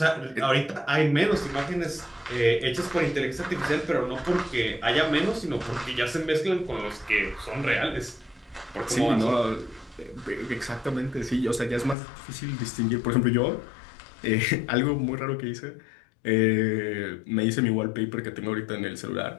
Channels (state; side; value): drops out; right; at 12.0 s